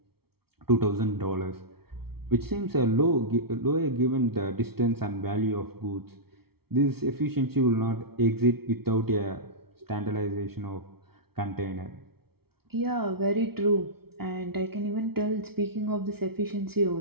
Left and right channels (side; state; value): left; late; 0.95 ms